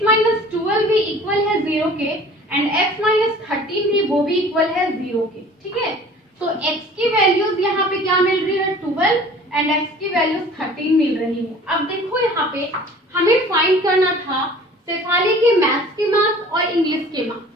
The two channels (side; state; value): both; normal; correlation 0.47